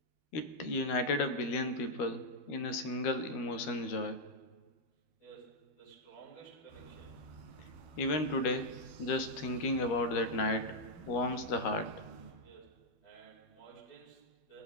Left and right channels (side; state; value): right; late; 12 ms